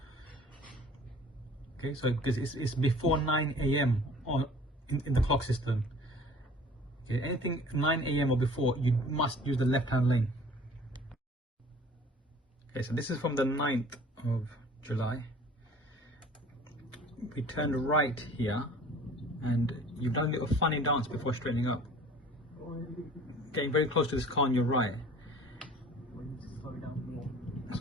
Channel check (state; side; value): normal; both; correlation 0.48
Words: Okay, so because it's before 9 AM in the clock system. Okay, anything 9 AM or before, you must use the left hand lane. Okay, so this is from the 9th of July. We turned right here and you've done a little funny dance before straightening up. Getting very close to this car on your right.